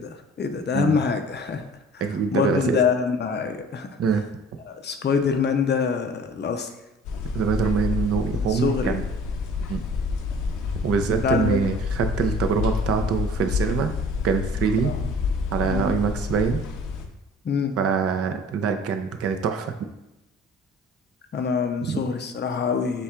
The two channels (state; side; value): normal; both; correlation 0.48